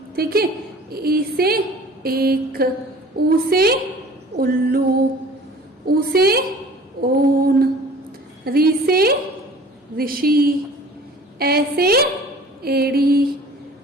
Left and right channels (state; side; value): normal; both; correlation 0.46